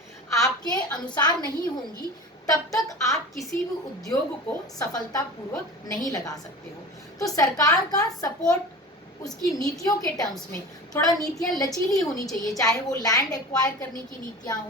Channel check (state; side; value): normal; both; correlation 0.35